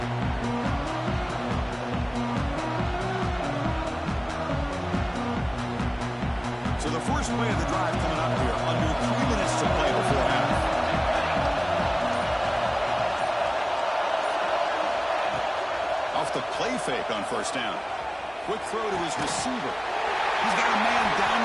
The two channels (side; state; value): both; identical; correlation 1.00